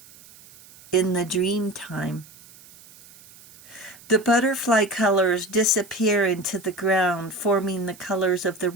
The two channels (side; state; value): right; noise; hiss, 23 dB below the sound